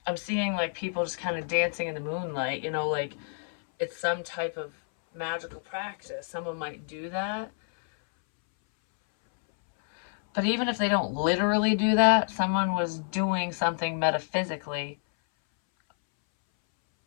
seeing like people just kind of dancing in the moonlight, you know, like it's some type of magical practice. Someone might do that. But even if they don't literally do that, someone was doing something metaphysically.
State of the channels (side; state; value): right; silent; 59 dB below the other